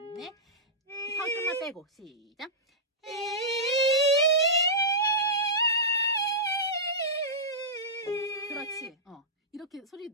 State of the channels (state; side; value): normal; both; correlation -0.17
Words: 넷. 혀 좀만 빼고 시작. 그렇지. 이렇게 소리